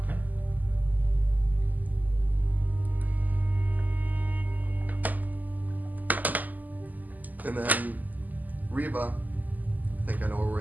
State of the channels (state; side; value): late; left; 0.082 ms